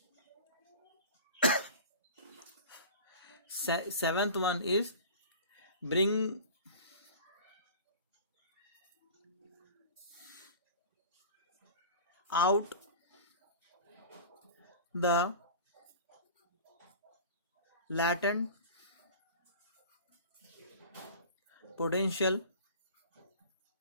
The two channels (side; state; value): both; inverted; correlation -0.38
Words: Seventh one is bring out the latent potentials